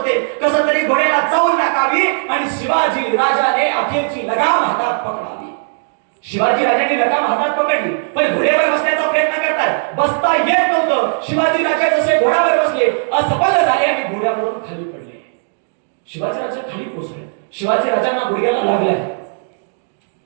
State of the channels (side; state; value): left; silent; digital silence